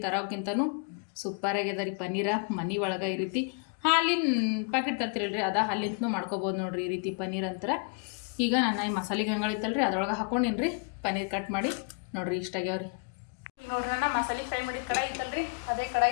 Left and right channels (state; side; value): quieter; right; 38.4 dB